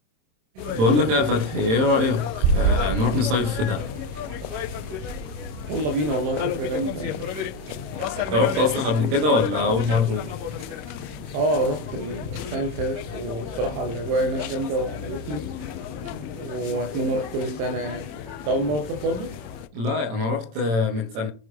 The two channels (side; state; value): left; late; 27 ms